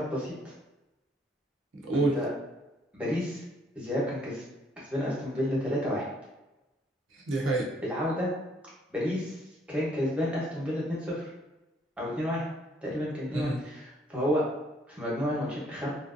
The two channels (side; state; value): both; normal; correlation 0.65